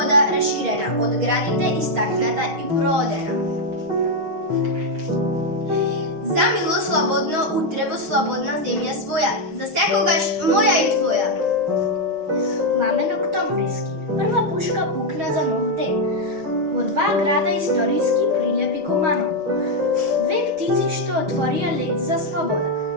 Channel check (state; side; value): late; left; 6.3 ms